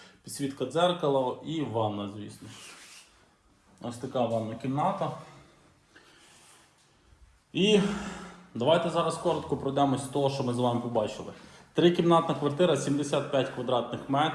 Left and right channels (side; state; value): both; identical; correlation 1.00